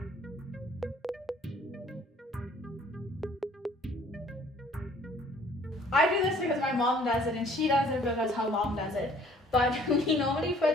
I do this because my mom does it and she does it because her mom does it. But we normally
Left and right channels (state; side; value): normal; both; correlation 0.56